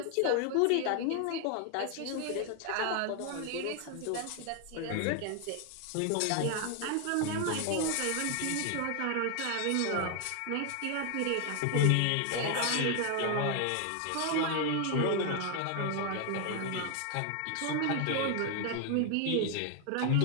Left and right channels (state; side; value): different; both; correlation 0.01